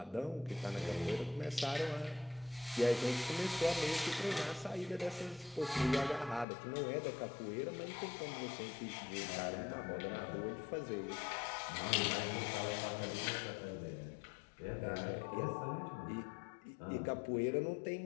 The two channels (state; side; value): drops out; right; at 6.5 s